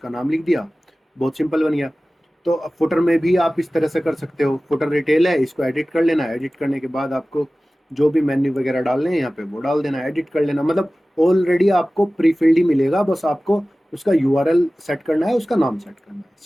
नाम लिख दिया, बहुत सिंपल बन गया। तो फुटर में भी आप इस तरह से कर सकते हो। फुटर रिटेल है, इसको एडिट कर लेना, एडिट करने के बाद आपको जो भी मेन्यू वगैरह डालने हैं यहाँ पे वो डाल देना, एडिट कर लेना। मतलब ऑलरेडी आपको प्री फिल्ड ही मिलेगा, बस आपको उसका यूआरएल सेट करना है, उसका नाम सेट करना है,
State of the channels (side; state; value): both; normal; correlation 0.97